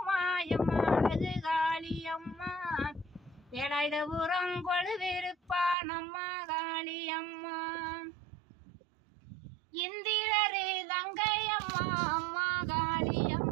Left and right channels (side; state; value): left; drops out; at 5.8 s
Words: எம்மா அழகு காளி அம்மா வேலாயுத உரங்கொழு விருப்பா நம்ம காளி அம்மா இந்திரரு தங்கையம்மா அம்மா காளி